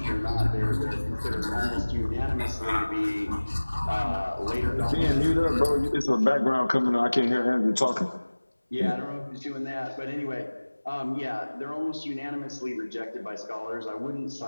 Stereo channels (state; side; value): inverted; both; correlation -1.00